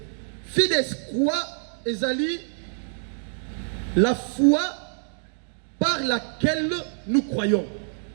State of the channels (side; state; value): left; silent; digital silence